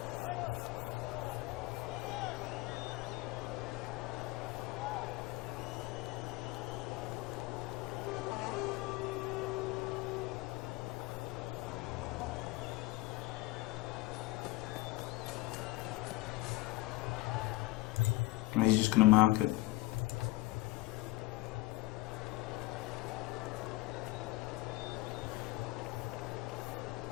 And he's just going to mark it.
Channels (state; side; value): quieter; right; 19.0 dB